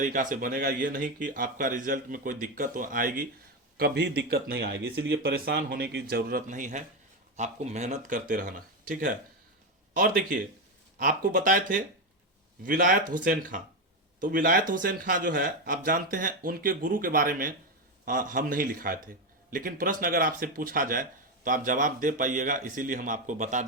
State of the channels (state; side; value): normal; both; correlation 0.11